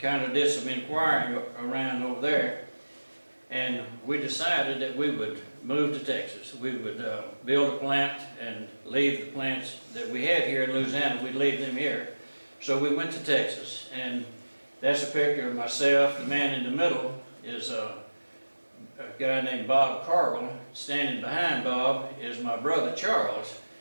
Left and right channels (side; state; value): both; inverted; correlation -1.00